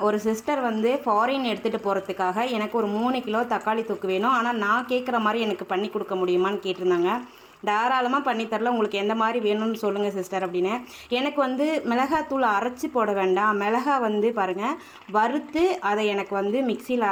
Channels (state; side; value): identical; both; correlation 1.00